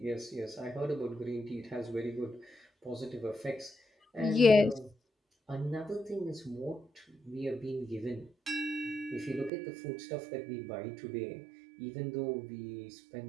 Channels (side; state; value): left; drops out; at 9.5 s